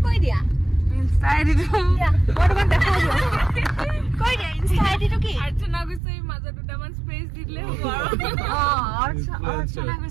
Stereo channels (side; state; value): left; drops out; at 6.0 s